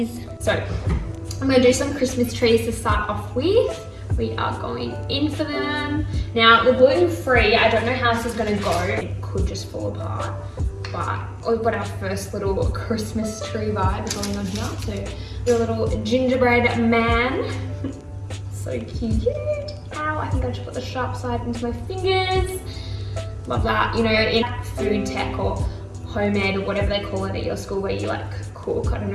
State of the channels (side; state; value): both; identical; correlation 1.00